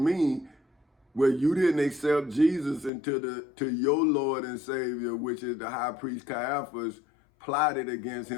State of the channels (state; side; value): drops out; right; at 2.9 s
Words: well, you didn't accept Jesus to your Lord and Savior, which is the high priest Caiaphas, plotted against